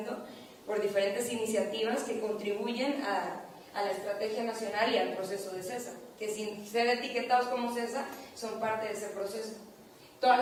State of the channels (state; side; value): identical; both; correlation 1.00